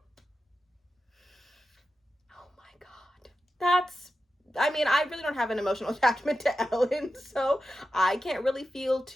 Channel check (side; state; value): both; normal; correlation 0.91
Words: Oh my god. I mean, I really don't have an emotional attachment to Ellen, so I can't really feel